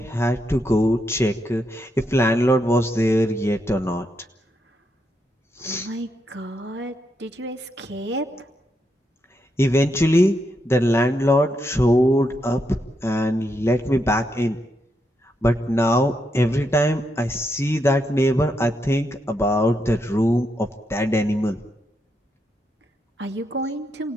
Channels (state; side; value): normal; both; correlation 0.81